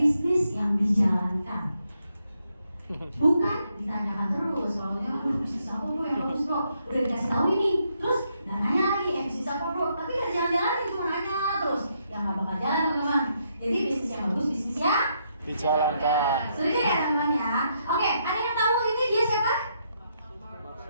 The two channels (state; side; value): inverted; both; correlation -0.77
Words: yang dijalankan. Bukan ditanyakan terus. Kalau bisnis apa bro yang bagus bro? Udah dikasih tahu ini. Terus dan nanya lagi bisnis apa bro? Tapi nggak jalan-jalan cuma nanya terus. Yang nggak bakal jalan teman-teman. Jadi bisnis yang bagus bisnis yang dijalankan. Setuju ya teman-teman ya? Oke, ada yang tahu ini dia siapa?